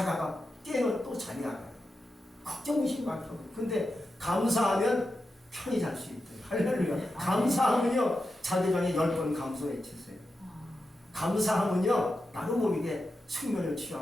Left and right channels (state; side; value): normal; both; correlation 0.90